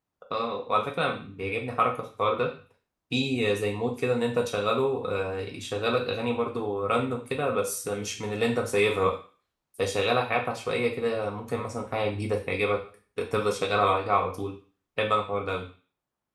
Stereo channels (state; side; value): identical; both; correlation 1.00